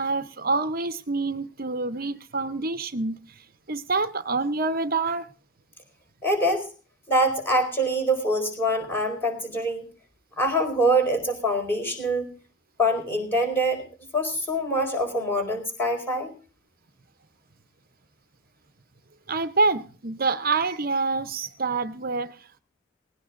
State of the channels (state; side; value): normal; both; correlation 0.04